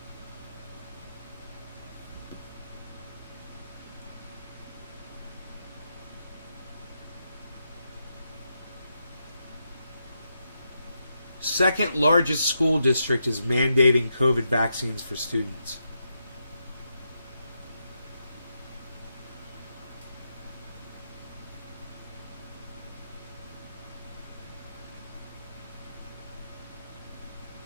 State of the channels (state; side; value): inverted; both; correlation -0.83